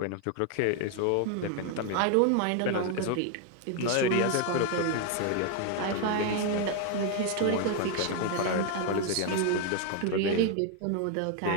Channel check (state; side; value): different; both; correlation 0.01